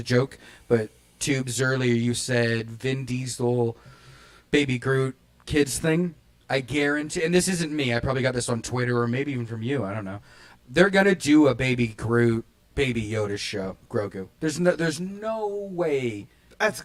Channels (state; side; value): identical; both; correlation 1.00